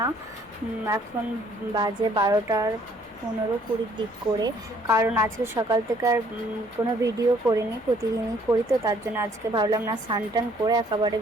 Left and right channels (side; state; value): both; normal; correlation 0.62